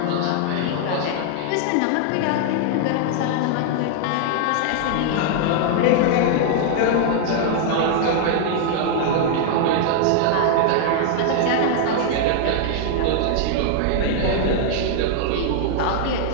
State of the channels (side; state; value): both; different; correlation -0.01